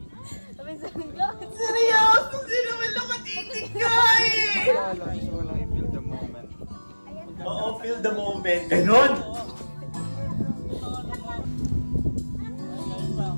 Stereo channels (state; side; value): inverted; both; correlation -1.00